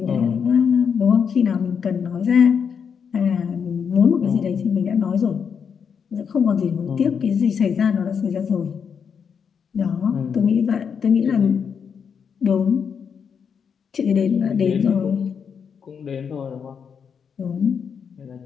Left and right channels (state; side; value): quieter; right; 6.8 dB